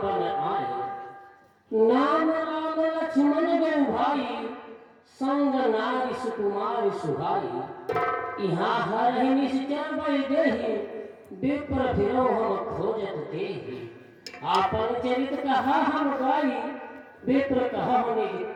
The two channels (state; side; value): identical; both; correlation 1.00